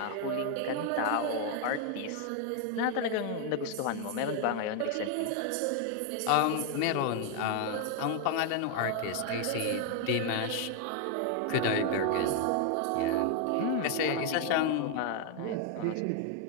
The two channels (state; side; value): different; both; correlation 0.01